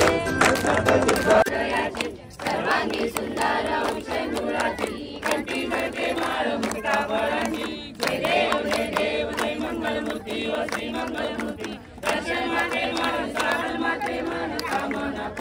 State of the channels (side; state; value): both; identical; correlation 1.00